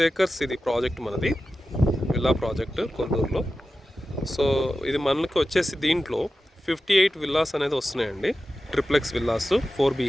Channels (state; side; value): normal; both; correlation 0.93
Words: acres ఇది ప్రాజెక్ట్ మనది, విల్లా ప్రాజెక్ట్ కొల్లూరులో. సో ఇది మనకి వచ్చేసి దీంట్లో 58 విల్లాస్ అనేది వస్తున్నాయండి, ట్రిప్లెక్స్ విల్లాస్ 4